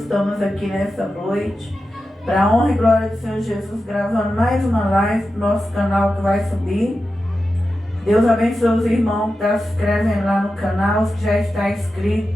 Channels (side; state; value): both; normal; correlation 0.91